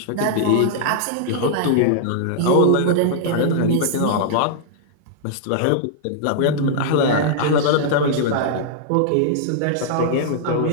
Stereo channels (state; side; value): different; both; correlation -0.01